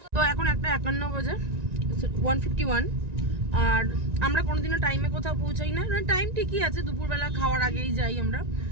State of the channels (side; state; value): left; late; 1.9 ms